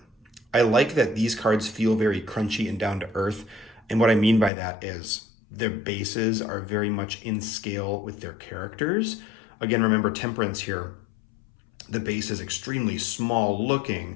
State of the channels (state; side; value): drops out; right; at 4.5 s